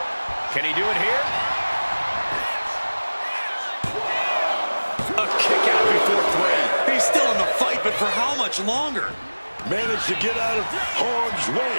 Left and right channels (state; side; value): inverted; both; correlation -1.00